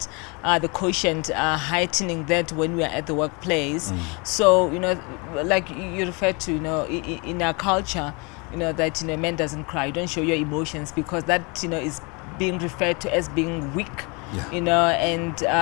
the quotient heightening that when we are at the workplace. So like you referred to, in our culture, that man doesn't cry. You don't show your emotions because that is being referred to as being weak. Yeah.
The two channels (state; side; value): quieter; right; 30.1 dB